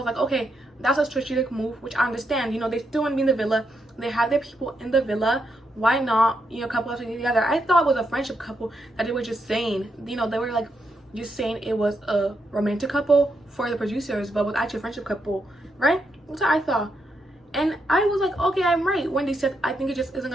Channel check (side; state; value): both; normal; correlation 0.81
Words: like, okay, that's a strategic move, which I understand. You know, they still want to be in the villa, they have their people in the villa, why not, you know, couple up together. I thought it was a friendship couple that they were just saying, you know, they were like just saying it was a romantic couple for the producers, but was actually a friendship couple, right? That's what I thought. And I was like, okay, I'm right. When they said I think it just isn't